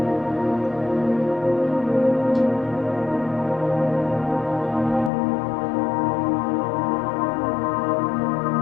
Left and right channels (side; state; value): right; drops out; at 5.1 s